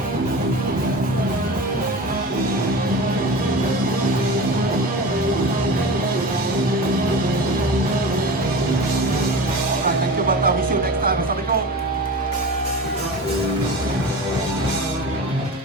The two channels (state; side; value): normal; both; correlation 0.32